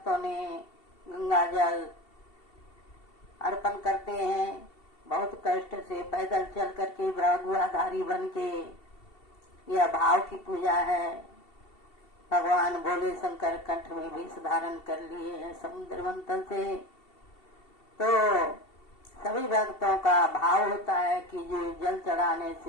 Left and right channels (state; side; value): late; right; 2.7 ms